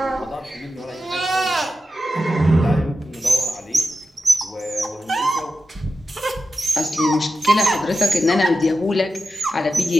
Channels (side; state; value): both; normal; correlation 0.91